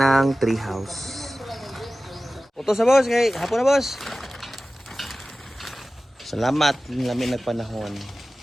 tree house. Puto sa boss. Kay hapon na boss. Salamat. Namin nagpanahon.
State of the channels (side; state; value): both; normal; correlation 0.96